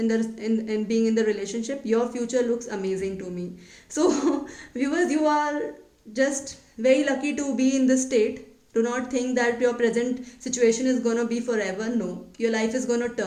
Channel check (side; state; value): both; identical; correlation 1.00